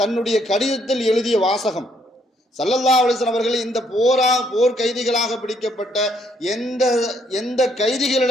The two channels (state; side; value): normal; both; correlation 0.70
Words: தன்னுடைய கடிதத்தில் எழுதிய வாசகம். ஸல்லல்லாஹு அலைஹி வஸல்லம் அவர்கள் இந்த போர் கைதிகளாக பிடிக்கப்பட்ட எந்த